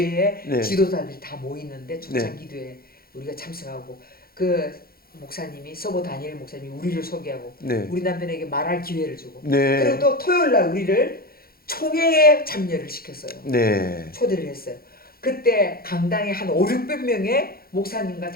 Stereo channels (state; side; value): late; right; 0.44 ms